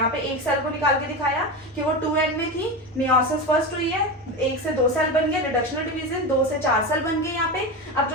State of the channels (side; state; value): both; normal; correlation 0.20